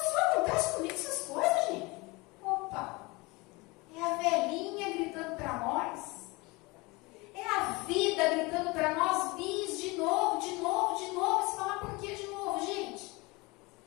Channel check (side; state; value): right; quieter; 24.7 dB